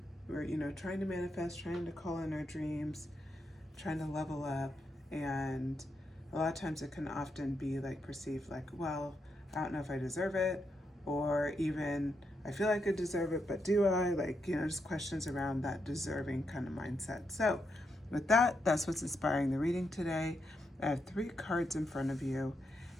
to manifest, trying to call in our dreams, trying to level up, and a lot of times it can often be like perceived like, well, I don't know if I deserve it, or even I feel like I deserve it, but do I? Like, just questions around that deserving kind of mindset. So with that, that's what's inspiring the reading today. I have 3 cards in front of you,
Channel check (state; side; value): normal; both; correlation 0.82